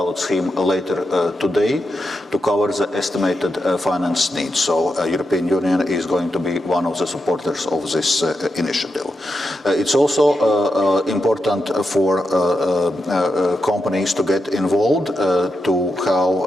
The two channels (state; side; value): normal; both; correlation 0.86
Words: scheme later today to cover the estimated finance needs. So European Union is going to be one of the supporters of this initiative. It's also important for companies to get involved, to